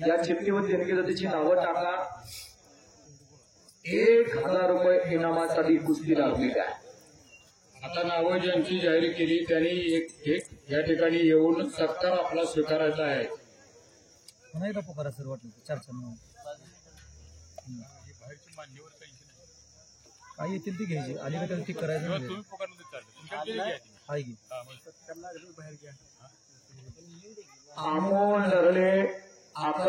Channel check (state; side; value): identical; both; correlation 1.00